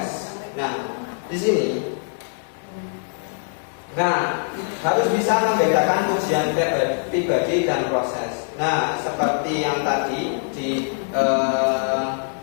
Nah, di sini, harus bisa membedakan ujian pribadi dan proses. Nah, seperti yang tadi di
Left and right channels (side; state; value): right; silent; digital silence